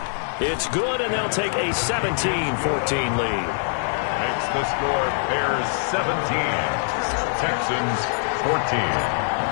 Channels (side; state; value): right; silent; 63 dB below the other